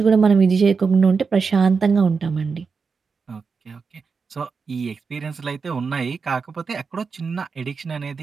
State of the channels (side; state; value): left; quieter; 5.2 dB